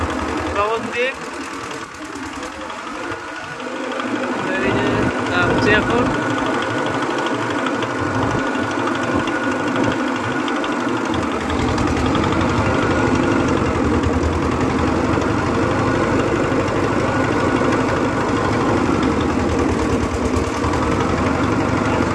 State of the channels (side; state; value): both; identical; correlation 1.00